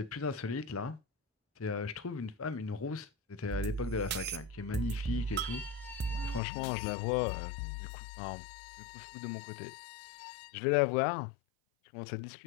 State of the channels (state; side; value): drops out; right; at 6.4 s